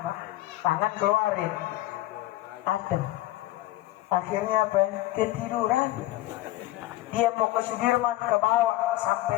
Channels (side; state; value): right; quieter; 16.2 dB